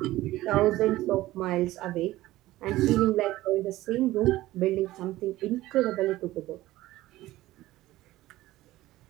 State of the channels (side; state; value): left; quieter; 16.5 dB